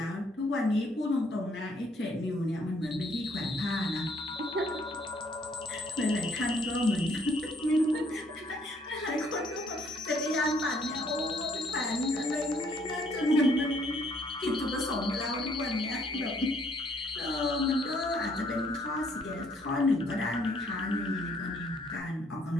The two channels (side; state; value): both; normal; correlation 0.65